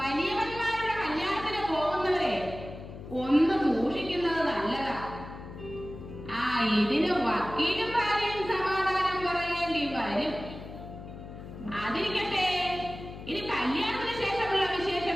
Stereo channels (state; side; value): noise; left; hum, 12 dB below the sound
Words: കല്യാണത്തിന് പോകുന്നവരെ ഒന്ന് സൂക്ഷിക്കുന്നത് നല്ലതാ. ഇതിന് വക്കീലും ഭാര്യയും സമാധാനം പറയേണ്ടി വരും. അതിരിക്കട്ടെ, ഇനി കല്യാണത്തിന് ശേഷമുള്ള